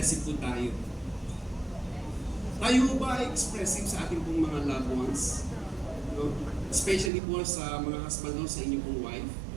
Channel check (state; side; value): drops out; left; at 7.1 s